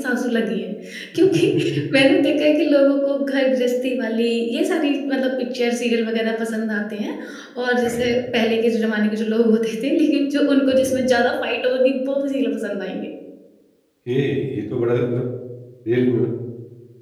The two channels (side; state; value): both; identical; correlation 1.00